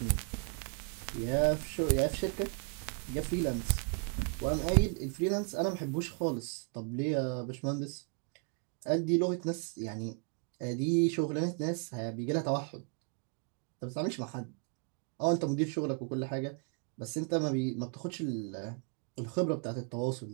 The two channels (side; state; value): left; quieter; 39.3 dB